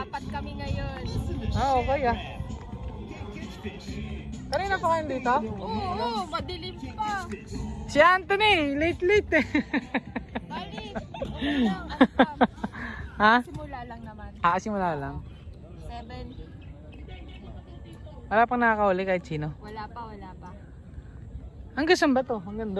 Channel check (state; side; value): identical; both; correlation 1.00